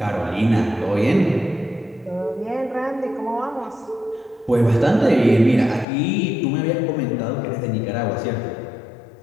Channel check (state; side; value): drops out; right; at 5.9 s